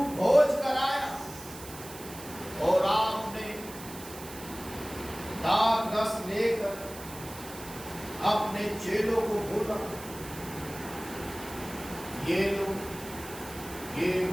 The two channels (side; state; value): right; noise; hiss, 14 dB below the sound